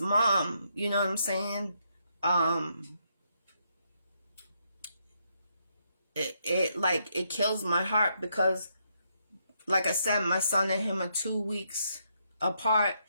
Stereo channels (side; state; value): both; inverted; correlation -0.77